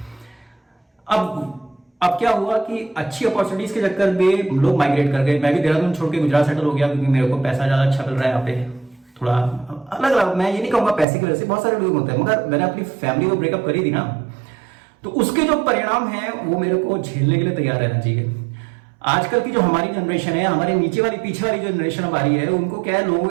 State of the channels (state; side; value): drops out; left; at 11.1 s